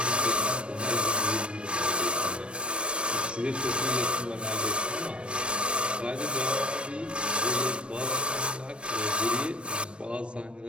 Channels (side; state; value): left; late; 0.058 ms